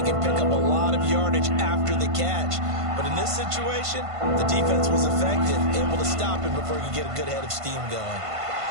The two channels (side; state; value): left; late; 1.5 ms